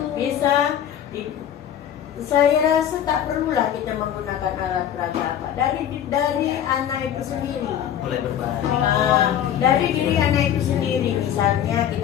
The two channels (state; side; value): quieter; right; 10.0 dB